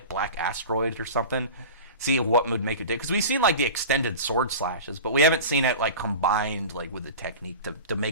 Black Asteroid or something. See what would make it do, because we've seen like the extended sword slashes, but we haven't seen it like combined like with the technique to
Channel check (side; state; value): both; inverted; correlation -0.34